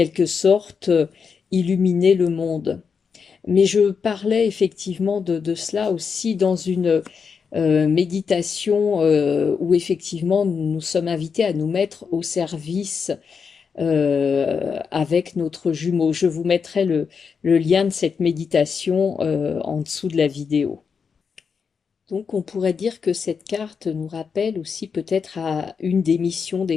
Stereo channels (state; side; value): quieter; right; 6.0 dB